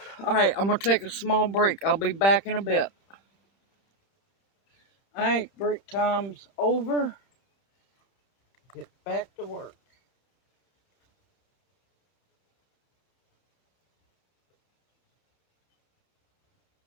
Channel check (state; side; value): late; right; 31 ms